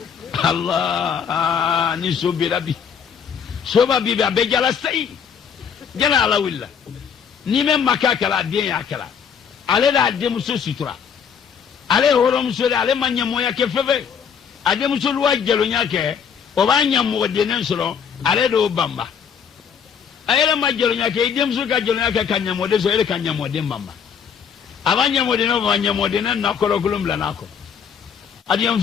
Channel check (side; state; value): right; quieter; 7.2 dB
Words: Allah ni so berabi so ba bibi abejala sai jana ala willa ni men makakala den yakala ale da demuso sutura ale horom so ale manya moya ke feve ademuso luwa jelo nyake o ba nya mo de nen soro ale do bamba ayele ma jelo nyake demuso ka jelo nyake kanya mo de so ele kanya mo de bamba abanya mo de no banya mo de na kolo kulum la nako adiyam